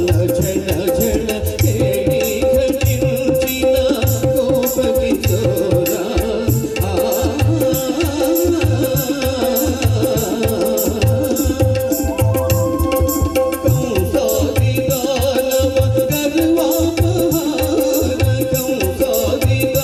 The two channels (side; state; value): both; identical; correlation 1.00